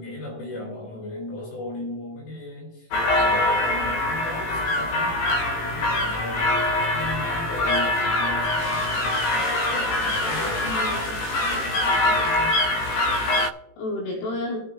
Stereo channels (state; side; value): late; right; 18 ms